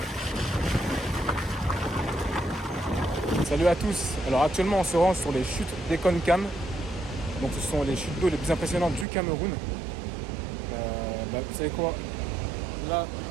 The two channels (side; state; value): left; drops out; at 9.1 s